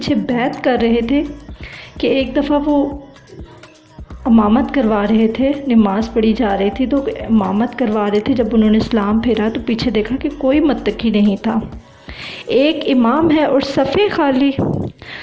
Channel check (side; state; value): both; identical; correlation 1.00